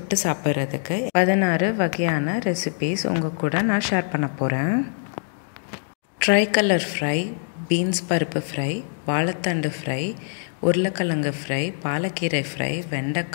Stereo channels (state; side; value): silent; right; 63 dB below the other